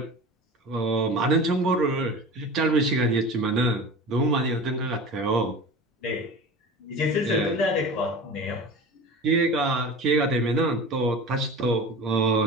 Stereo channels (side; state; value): both; normal; correlation 0.34